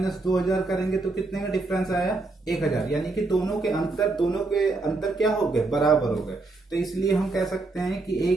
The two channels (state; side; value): quieter; left; 3.4 dB